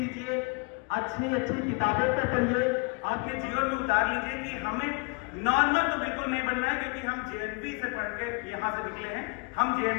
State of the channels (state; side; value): quieter; right; 32.8 dB